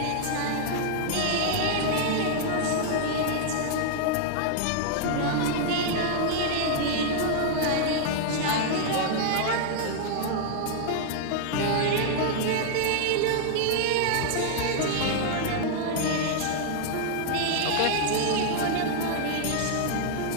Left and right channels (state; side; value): different; both; correlation 0.00